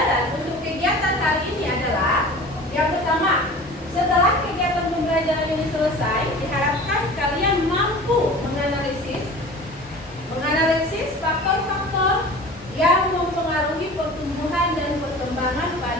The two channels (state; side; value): normal; both; correlation 0.40